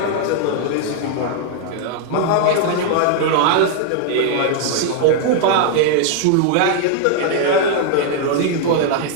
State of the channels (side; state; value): both; different; correlation 0.00